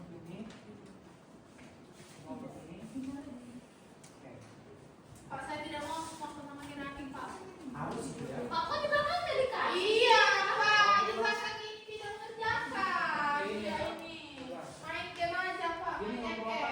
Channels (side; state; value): both; identical; correlation 1.00